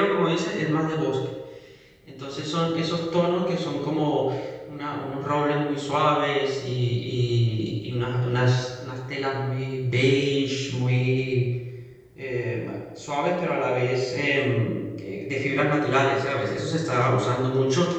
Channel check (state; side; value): identical; both; correlation 1.00